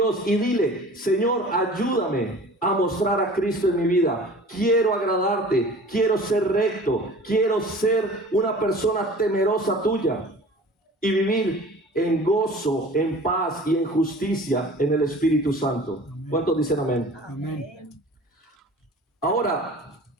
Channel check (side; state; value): both; normal; correlation 0.43